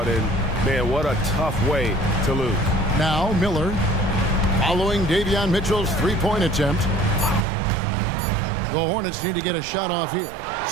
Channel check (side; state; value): left; drops out; at 7.5 s